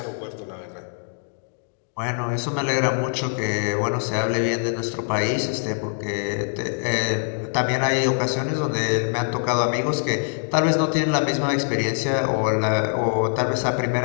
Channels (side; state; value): right; silent; digital silence